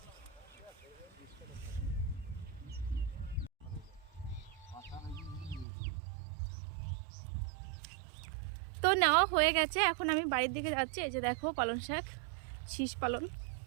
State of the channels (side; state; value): left; drops out; at 5.7 s